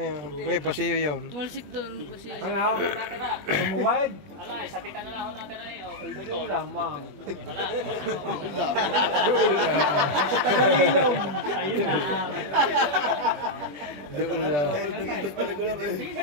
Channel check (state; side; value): late; left; 20 ms